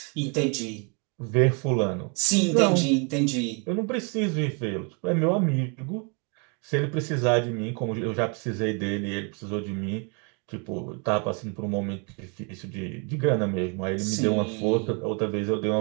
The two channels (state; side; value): quieter; left; 35.1 dB